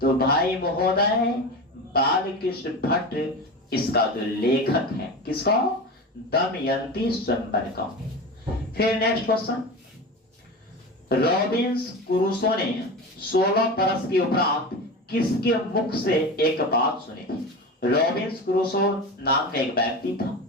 भाई महोदय बालकृष्ण भट्ट इसका जो लेखक है, किसका? दमयंती स्वयंवर का। फिर नेक्स्ट क्वेश्चन, रॉबिन्स क्रूसो ने 16 बरस के उपरांत किसके मुख से एक बात सुनी थी? रॉबिन्स क्रूसो नाम का एक व्यक्ति था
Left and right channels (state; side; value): normal; both; correlation 0.27